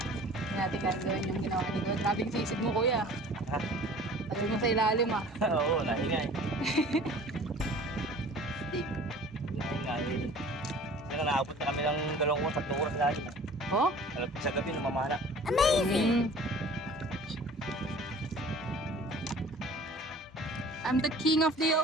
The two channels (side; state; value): both; normal; correlation 0.46